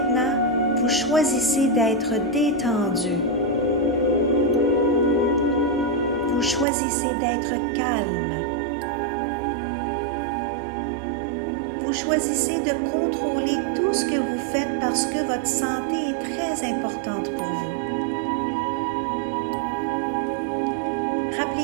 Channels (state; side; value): drops out; left; at 6.7 s